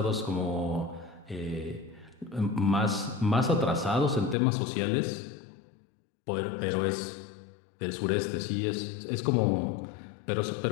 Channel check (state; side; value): drops out; right; at 4.4 s